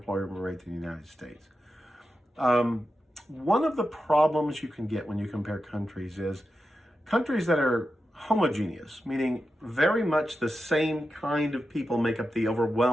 rate than the United States. One of the problems you can get when you compare countries is countries that are homogeneous, meaning very much the same kind of people make up the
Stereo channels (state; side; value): normal; both; correlation 0.90